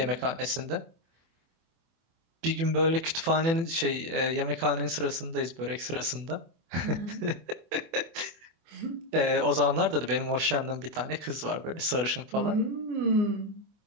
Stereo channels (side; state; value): left; late; 24 ms